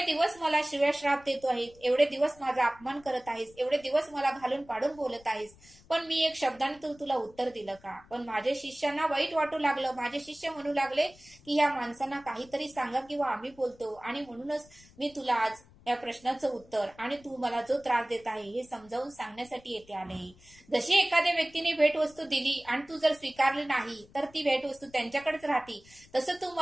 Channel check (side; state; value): left; noise; rumble, 26 dB below the sound